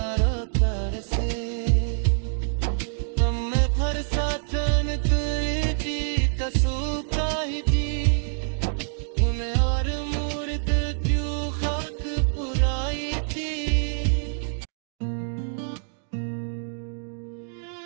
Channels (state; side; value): silent; left; digital silence